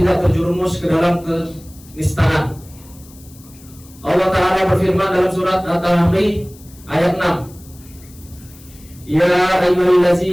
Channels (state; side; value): noise; left; hiss, 24 dB below the sound